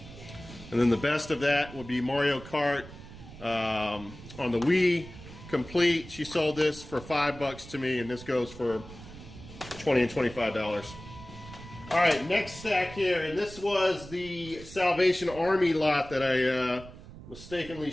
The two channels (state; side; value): noise; right; rumble, 16 dB below the sound